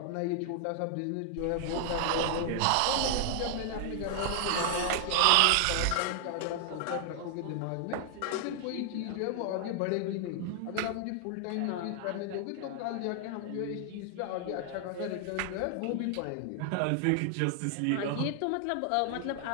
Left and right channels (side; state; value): both; different; correlation 0.00